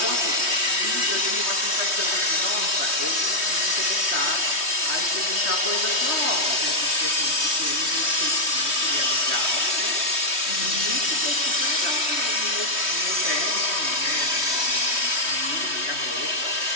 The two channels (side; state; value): left; late; 3.2 ms